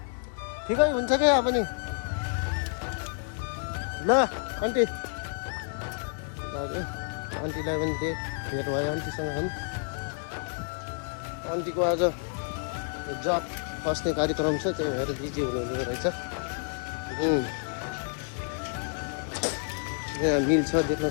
ठिकै हुन्छ क्या यहाँ पनि। ल आन्टी आन्टीलाई पनि भेट भयो आन्टीसँग पनि। आन्टीको आज जब फस्ने कार्यक्रम छ, त्यही भएर बिजी हुनुहुने रहेछ। यहाँ मिल छ देख्न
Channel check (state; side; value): silent; right; 57 dB below the other